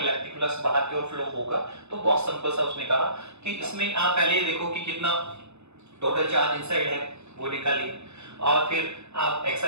फ्लक्स बाहर की ओर फ्लो होगा। तो बहुत सिंपल सा उसने कहा कि इसमें आप पहले ये देखो कि कितना टोटल चार्ज इनसाइड है वो निकालिए और फिर आप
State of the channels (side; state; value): left; late; 0.81 ms